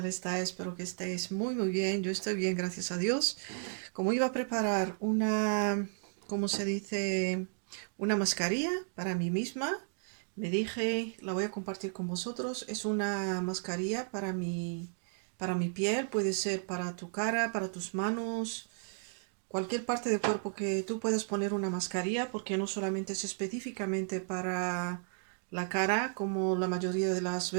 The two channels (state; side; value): silent; left; digital silence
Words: estáis? Espero que estéis muy bien. Yo estoy bien, gracias a Dios. Como iba a preparar una, ¿cómo se dice? Una mascarilla para mí misma, me dije, la voy a compartir con vosotros. Es una mascarilla para mi piel, puede ser para tu cara, para tus manos, cualquier parte del cuerpo que tú puedas poner una mascarilla, porque no solamente es específicamente para la cara, como la mayoría de las